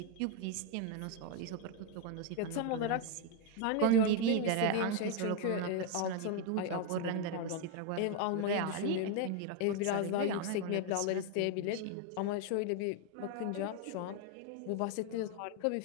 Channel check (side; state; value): both; different; correlation 0.01